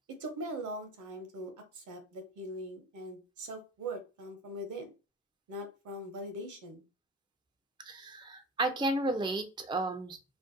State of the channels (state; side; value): normal; both; correlation 0.35